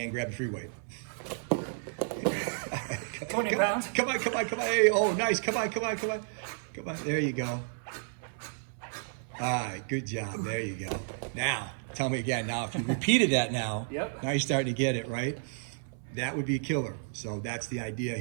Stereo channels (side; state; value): left; silent; 57 dB below the other